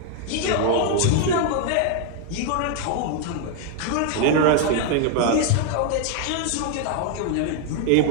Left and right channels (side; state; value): both; different; correlation 0.00